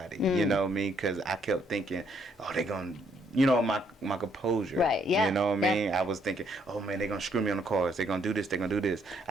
You know what I mean? Because I kept thinking, oh, they're gonna. My composure. Right, yeah. You know what I mean? I was thinking, oh man, they're gonna screw me on the cards. They're gonna do this,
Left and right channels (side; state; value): both; normal; correlation 0.70